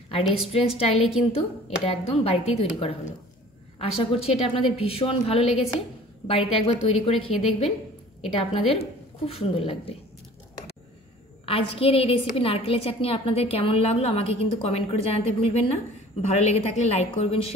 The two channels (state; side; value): normal; both; correlation 0.48